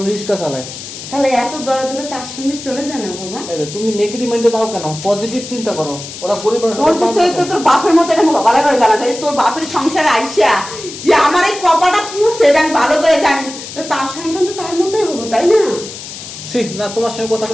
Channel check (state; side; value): noise; left; hiss, 11 dB below the sound